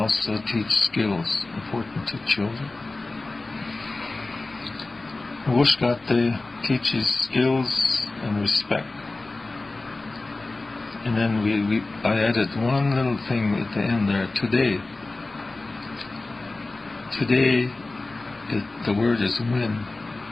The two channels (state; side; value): quieter; right; 3.2 dB